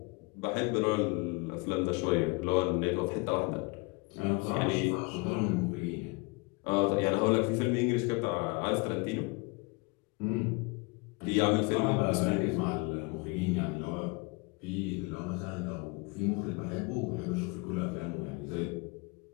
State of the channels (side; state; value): right; quieter; 28.7 dB